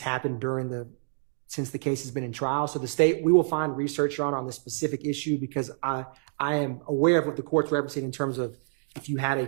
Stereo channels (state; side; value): silent; left; digital silence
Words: happened since the case has been in trial. So the state, we will find research, Your Honor, on this specific issue, because I am aware of what the court's referencing in terms of if you had a